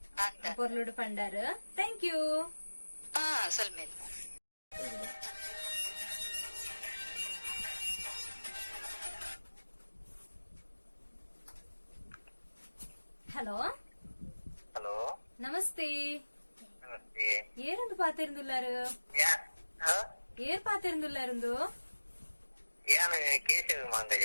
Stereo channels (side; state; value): both; inverted; correlation -1.00